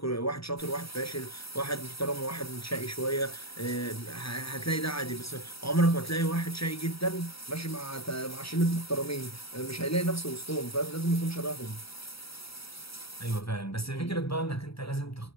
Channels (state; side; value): late; right; 0.76 ms